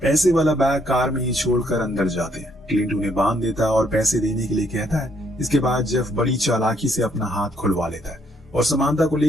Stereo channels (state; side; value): normal; both; correlation 0.70